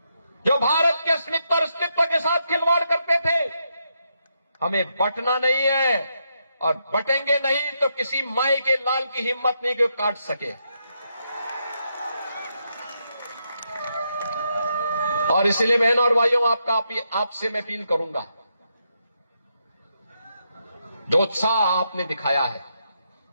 जो भारत के अस्मिता और अस्तित्व के साथ खिलवाड़ करते थे। हमें बटना नहीं है, और बटेंगे नहीं तो किसी माई के लाल की हिम्मत नहीं कि वो काट सके। और इसलिए बहनों और भाइयों, आपसे मैं अपील करूंगा, जो उत्साह आपने दिखाया है,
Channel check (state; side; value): inverted; both; correlation -0.81